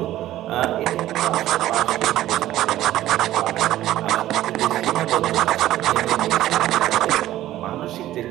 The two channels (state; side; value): quieter; left; 14.1 dB